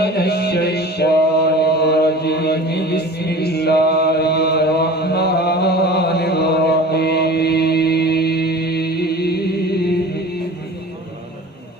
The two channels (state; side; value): normal; both; correlation 0.39